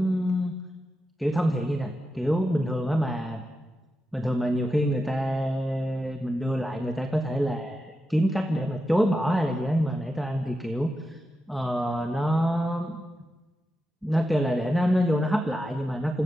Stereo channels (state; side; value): normal; both; correlation 0.89